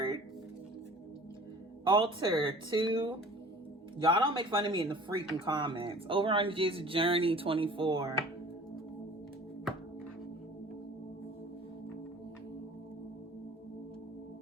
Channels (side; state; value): both; normal; correlation 0.46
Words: Altar 2. Y'all don't make fun of me in the freaking comments. Over on J's Journey 24.